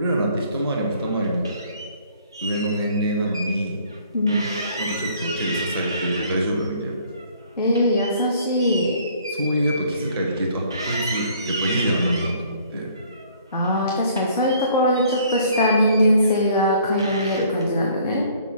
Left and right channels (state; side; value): inverted; both; correlation -0.59